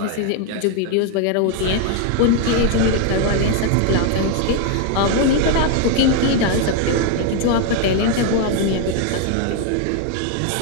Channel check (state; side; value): different; both; correlation 0.00